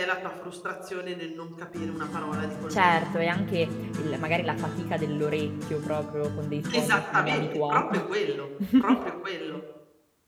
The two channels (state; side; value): identical; both; correlation 1.00